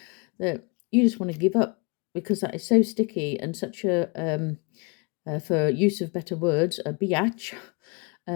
that you just want to give up, because that is so sticky and such a, for use of better words, a biatch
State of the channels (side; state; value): right; quieter; 31.3 dB